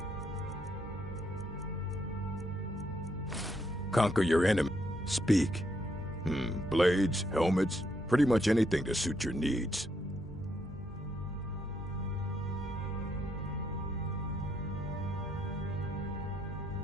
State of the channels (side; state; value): both; normal; correlation 0.75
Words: Conquer your enemy. Speak. Blades, helmets, pretty much anything to suit your needs.